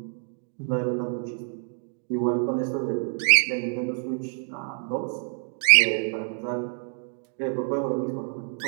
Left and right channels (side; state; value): left; silent; 59 dB below the other